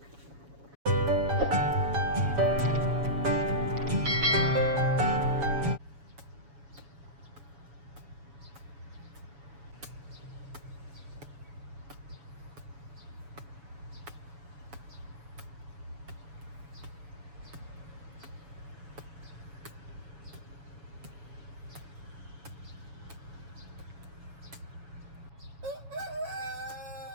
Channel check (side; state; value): left; late; 7.1 ms